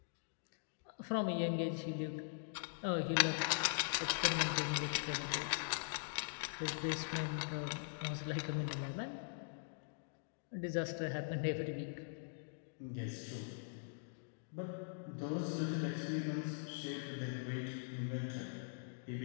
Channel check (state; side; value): silent; right; digital silence